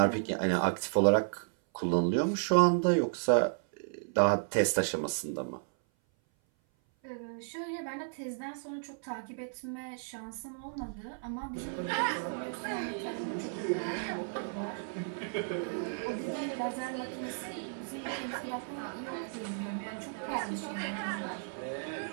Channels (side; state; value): left; silent; 55 dB below the other